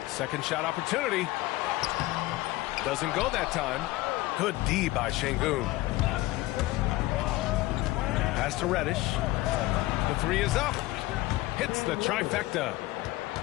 Second shot opportunity. Doesn't go that time. Good D by Şengün. Pass to Reddish. The three is up. Hits the trifecta.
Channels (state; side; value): quieter; right; 18.6 dB